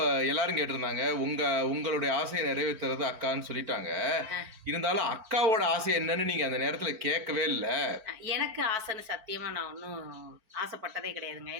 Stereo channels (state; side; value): late; left; 4.5 ms